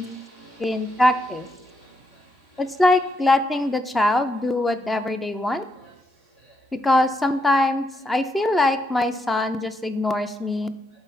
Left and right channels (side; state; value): both; normal; correlation 0.80